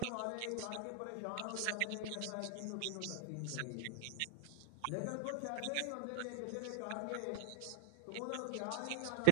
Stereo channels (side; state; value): both; different; correlation 0.00